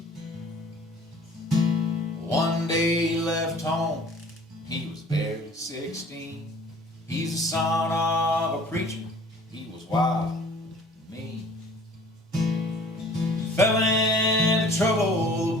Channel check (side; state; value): both; normal; correlation 0.50